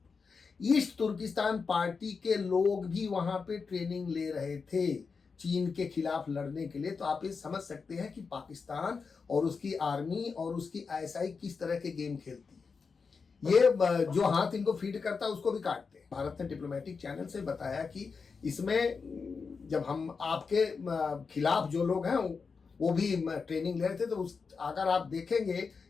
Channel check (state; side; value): quieter; right; 5.1 dB